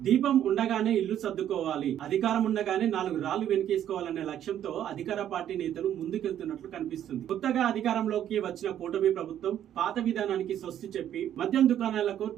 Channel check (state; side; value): quieter; left; 10.7 dB